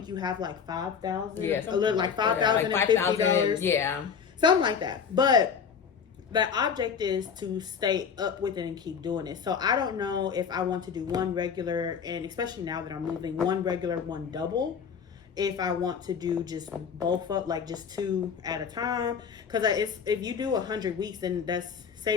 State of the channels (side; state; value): right; quieter; 6.7 dB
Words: you have like 5,000. Yeah. A little like $5,050. Yeah. Something like that. But the object is to stay up with it and keep doing it. So I don't know if I want to do one regular, and especially now that I'm moving, one regular, one double. If I want to do just both up, like just 2 at a time. Because if you do 100 weeks, then that's